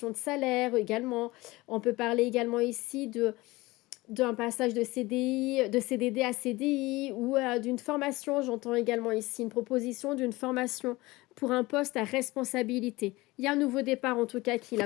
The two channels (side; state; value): right; quieter; 20.8 dB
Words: de salaire également. On peut parler également ici d'un passage de CDD à CDI ou, d'une formation. J'entends également ici une proposition d'une formation pour un poste à responsabilité. Il y a un nouveau départ en tout cas qui est